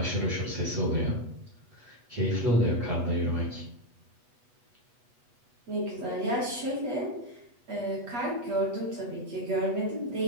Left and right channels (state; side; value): late; left; 8.2 ms